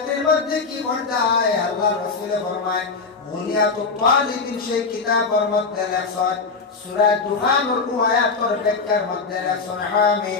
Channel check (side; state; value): right; quieter; 4.5 dB